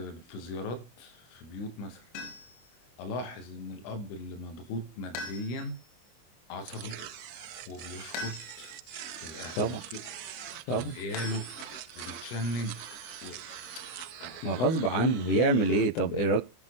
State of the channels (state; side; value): late; right; 24 ms